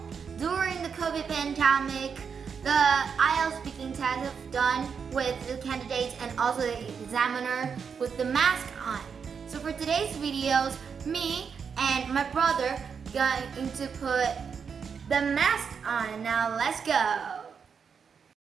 During the COVID pandemic, the IELTS speaking test is done with the candidates and also the examiner with the mask on. So for today's videos, me and my brother going to put the mask on. Now let's go.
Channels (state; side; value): quieter; left; 6.4 dB